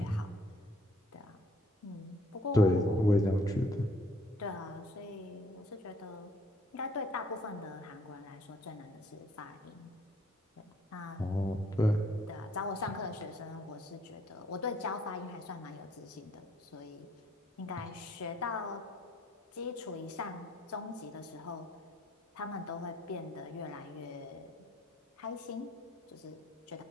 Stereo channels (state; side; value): normal; both; correlation 0.64